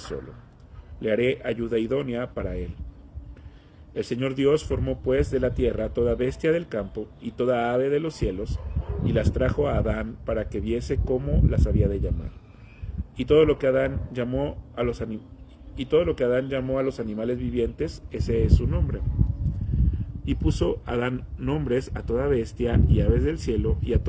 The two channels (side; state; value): both; identical; correlation 1.00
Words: le haré ayuda idónea para él. El Señor Dios formó pues de la tierra toda bestia del campo y toda ave de los cielos, y las trajo a Adán para que viese cómo las había de llamar. Y todo lo que Adán llamó a los animales vivientes, ese es su nombre. Y puso Adán nombres a toda bestia y aves del cielo y a